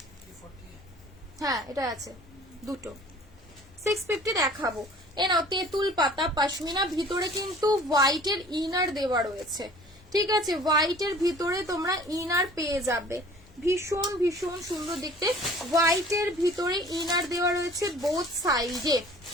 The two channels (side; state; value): both; normal; correlation 0.49